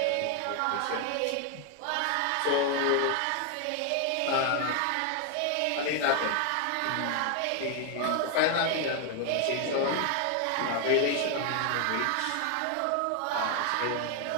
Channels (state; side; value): different; both; correlation 0.00